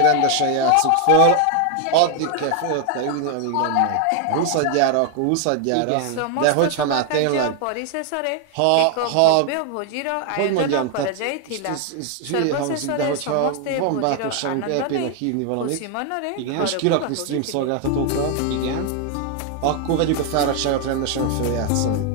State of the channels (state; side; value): different; both; correlation 0.01